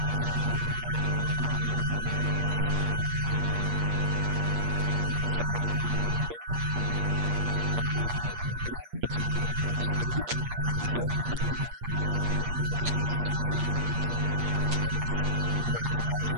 your work call it your magnum opus. I would say it's one of many, and it need not be the last magnum opus, but it is one, and it's certainly the work that most is associated with you. It was published in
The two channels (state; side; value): late; left; 8.5 ms